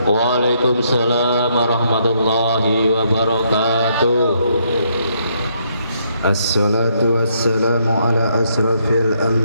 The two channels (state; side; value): inverted; both; correlation -0.73